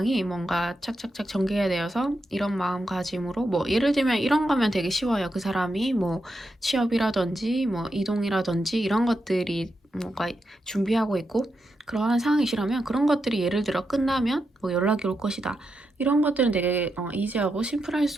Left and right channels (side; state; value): both; normal; correlation 0.85